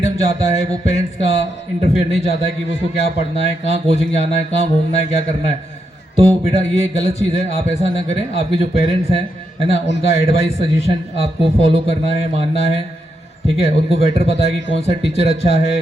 चाहता है, वो पेरेंट्स का इंटरफेयर नहीं चाहता है कि वो उसको क्या पढ़ना है, कहाँ कोचिंग जाना है, कहाँ घूमना है, क्या करना है। तो बेटा ये गलत चीज़ है, आप ऐसा ना करें। आपके जो पेरेंट्स हैं, है ना, उनका एडवाइस, सजेशन आपको फॉलो करना है, मानना है, ठीक है। उनको बेटर पता है कि कौन सा टीचर अच्छा है,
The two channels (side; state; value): both; normal; correlation 0.82